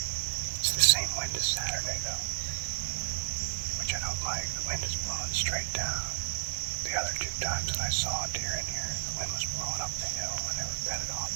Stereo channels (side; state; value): left; silent; digital silence